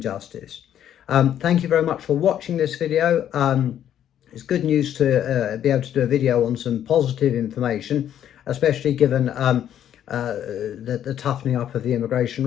Thank you very much for watching this video. It's good news to be able to do a video on some positive information, especially given the toughening up of the immigration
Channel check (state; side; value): quieter; right; 10.4 dB